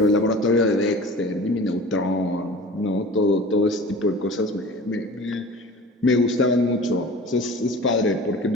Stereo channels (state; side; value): normal; both; correlation 0.40